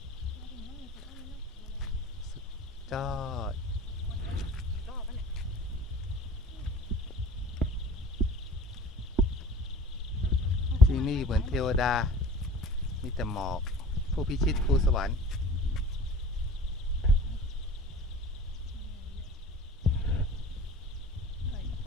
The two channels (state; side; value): normal; both; correlation 0.43